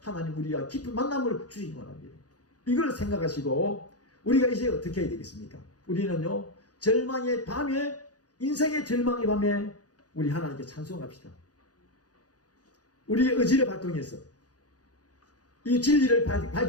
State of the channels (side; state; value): right; late; 0.68 ms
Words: 하나님 우리와 깊은 만남을 주시기 원합니다. 이걸 생각하시고 우리가 이제 어떻게 해야 되겠습니까? 우리는요, 절망의 밤에, 인생의 절망의 밤에 우리 하나님께 찬송합시다. 우리의 의지를 발동해서 이 진리를